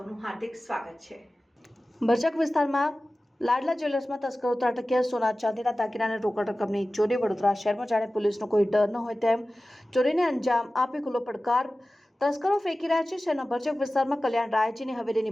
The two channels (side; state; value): both; normal; correlation 0.96